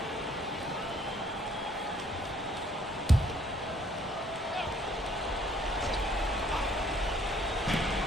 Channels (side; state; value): both; normal; correlation 0.62